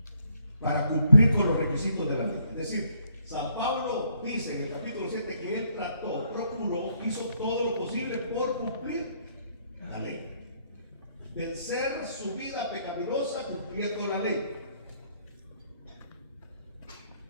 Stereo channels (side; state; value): both; inverted; correlation -0.69